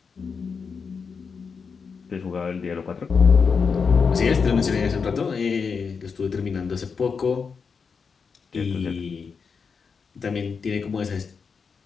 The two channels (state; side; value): quieter; right; 5.6 dB